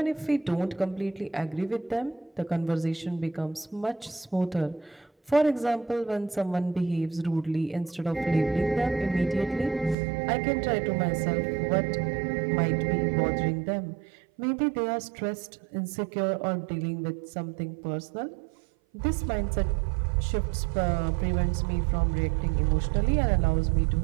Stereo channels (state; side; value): drops out; left; at 10.0 s